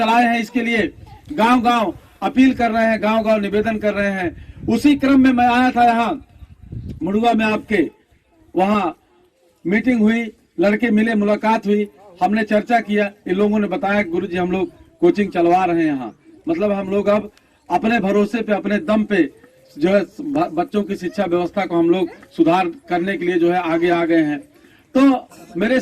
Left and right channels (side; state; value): both; identical; correlation 1.00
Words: हैं, इसके लिए गांव गांव अपील कर रहे हैं, गांव गांव निवेदन कर रहे हैं। उसी क्रम में मैं आया था यहाँ मुड़ुआ में, आपके वहाँ मीटिंग हुई, लड़के मिले, मुलाकात हुई, हमने चर्चा किया। इन लोगों ने बताया गुरुजी हम लोग कोचिंग चलवा रहे हैं यहाँ, मतलब हम लोग अब अपने भरोसे पे, अपने दम पे जो है बच्चों की शिक्षा व्यवस्था को हम लोग सुधार करने के लिए जो है आगे आ गए हैं। तो मेरे